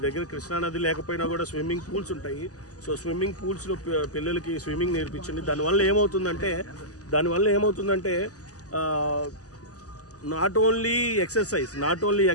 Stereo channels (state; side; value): late; right; 0.67 ms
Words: దగ్గర కృష్ణానది లేకపోయినా కూడా స్విమ్మింగ్ పూల్స్ ఉంటాయి. సో స్విమ్మింగ్ పూల్స్లో పిల్లలకి స్విమ్మింగ్ నేర్పించండి. దానివల్ల ఏమవుతుందంటే నాట్ ఓన్లీ